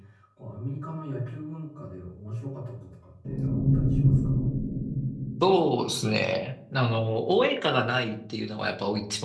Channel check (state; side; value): identical; both; correlation 1.00